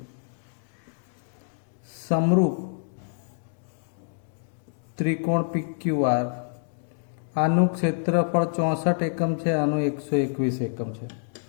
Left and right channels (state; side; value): silent; right; digital silence